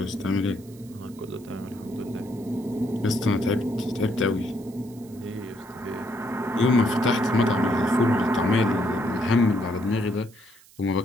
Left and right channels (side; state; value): right; noise; hiss, 25 dB below the sound